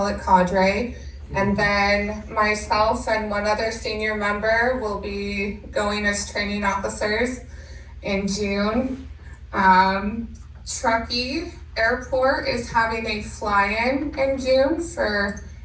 it cadre. And then myself and one other senior member will be going as training officers in June. Truckee Airport is having a fly-in in June for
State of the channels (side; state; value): both; identical; correlation 1.00